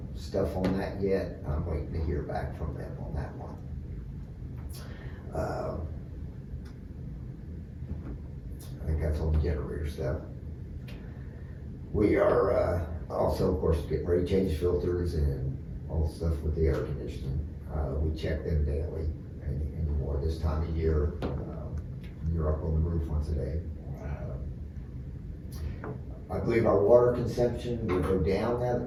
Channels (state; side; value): identical; both; correlation 1.00